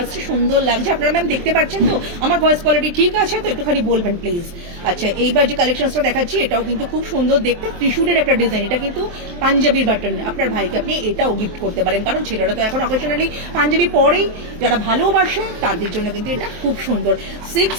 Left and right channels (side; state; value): left; late; 23 ms